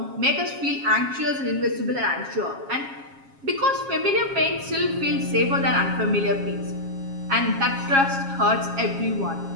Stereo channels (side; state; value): left; late; 7.3 ms